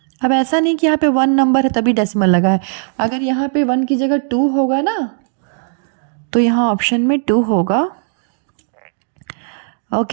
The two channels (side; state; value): left; silent; digital silence